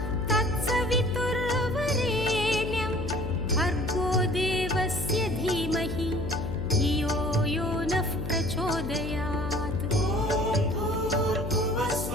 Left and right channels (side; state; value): left; noise; hum, 5 dB below the sound